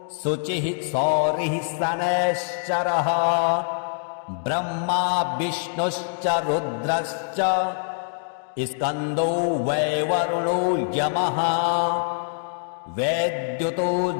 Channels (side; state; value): right; silent; digital silence